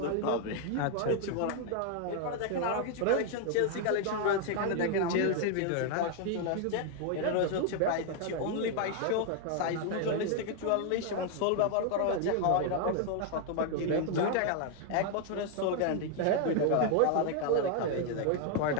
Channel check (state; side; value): different; both; correlation 0.00